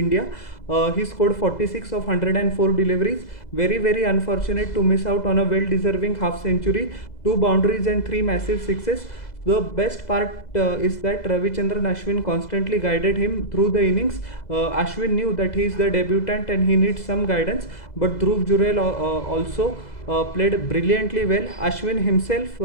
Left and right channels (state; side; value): late; right; 2.0 ms